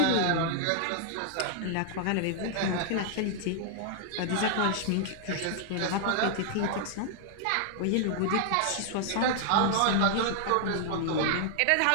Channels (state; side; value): different; both; correlation 0.00